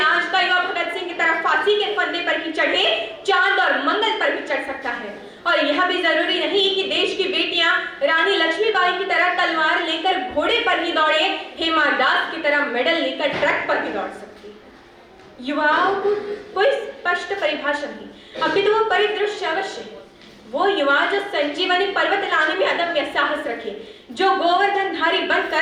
का युवा भगत सिंह की तरह फांसी के फंदे पर ही चढ़े, चांद और मंगल पर भी चढ़ सकता है। और यह भी जरूरी नहीं कि देश की बेटियां रानी लक्ष्मीबाई की तरह तलवार लेकर घोड़े पर ही दौड़े, हेमा दास की तरह मेडल लेकर ट्रक पर भी दौड़ सकती है। युवाओं को कोई स्पष्ट परिभाषा नहीं, अपितु वो परिदृश्य अवश्य है। वो युवा जो संजीवनी पर्वत लाने में अदम्य साहस रखे, जो गोवर्धनधारी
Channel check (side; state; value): both; identical; correlation 1.00